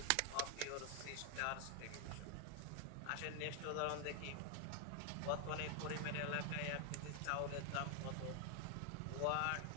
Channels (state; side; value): different; both; correlation 0.00